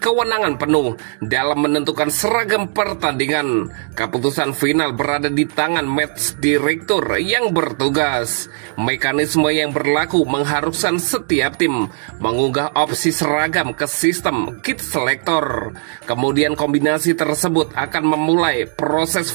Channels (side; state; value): left; silent; 62 dB below the other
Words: penuh dalam menentukan seragam pertandingan. Keputusan final berada di tangan match direktur yang bertugas. Mekanisme yang berlaku mengharuskan setiap tim mengunggah opsi seragam ke sistem kit selector. Kemudian kombinasi tersebut akan memulai proses